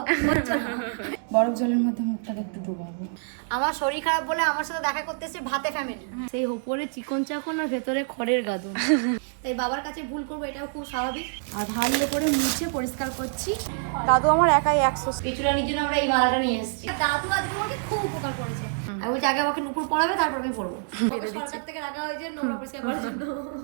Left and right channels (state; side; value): silent; left; 61 dB below the other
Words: হচ্ছে না। বরফ জলের মধ্যে মুখটাকে একটু ডুবাবো। আমার শরীর খারাপ বলে আমার সাথে দেখা করতে এসে ভাতে ফ্যামিলি, সেই উপরে চিকন চাকন আর ভেতরে খড়ের গাদন। তাই বাবার কাছে ভুল করবো, এটাও খুব স্বাভাবিক। আর ভালো করে মুছে পরিষ্কার করছি। দাদু আমার একাই 100 কিছুটা নিজের আমরা এই মালাটা নিয়ে এসেছি। দাদু আজকে আমাকে খুব উপকার করেছে। আমি বলছি আগে আমাকে নুপুর পড়াবে, তারপর আমি পড়বো। বেঁধে দিচ্ছি। সরকার থেকে রাখা হয়েছে নোংরা পরিষ্কার করার জন্য।